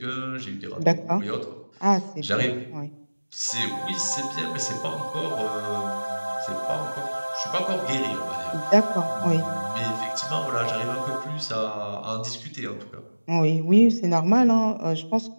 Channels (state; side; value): inverted; both; correlation -1.00